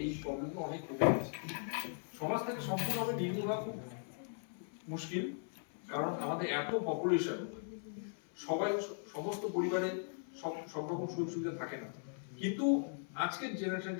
এই প্রবলেমগুলো অনেক কমে গেছে। সমাজ থেকে সম্পূর্ণভাবে নির্মূল হওয়া খুব মুশকিল, কারণ আমাদের এত পপুলেশন, সমস্ত পরিবারে সব রকম সুযোগ সুবিধা থাকে না। কিন্তু আজকের জেনারেশন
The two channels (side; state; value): right; silent; 52 dB below the other